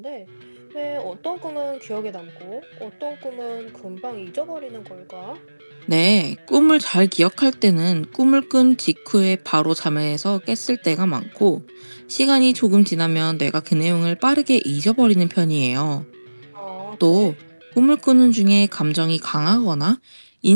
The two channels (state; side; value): inverted; both; correlation -1.00